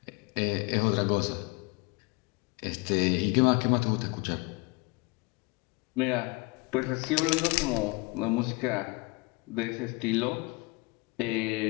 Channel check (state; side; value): quieter; right; 26.4 dB